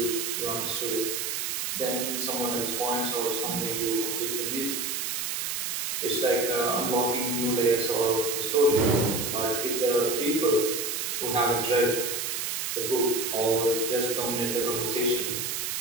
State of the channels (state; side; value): noise; right; hiss, 2 dB below the sound